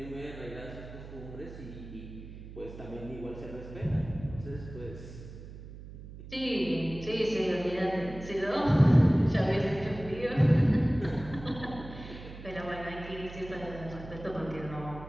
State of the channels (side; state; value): right; noise; hum, 14 dB below the sound